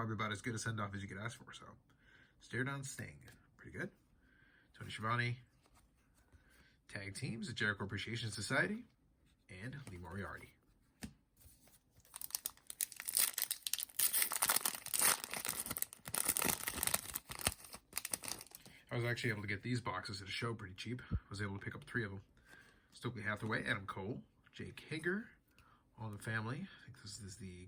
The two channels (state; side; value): identical; both; correlation 1.00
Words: about as good a send-off as you could ask for. So, stare down Sting. Pretty good. Tony Schiavone. Tag teams, the Jericho Appreciation Society, and Lee Moriarty. I was actually able to get these boxes at a show pretty cheap. I was able to pick up 3 of them. Stokely Hathaway, Adam Cole, Jake Hager, All in the Family. I think this is the